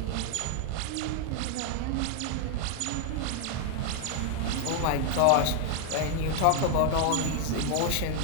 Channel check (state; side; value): different; both; correlation 0.00